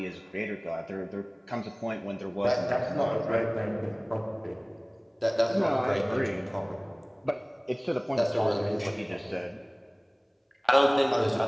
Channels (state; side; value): identical; both; correlation 1.00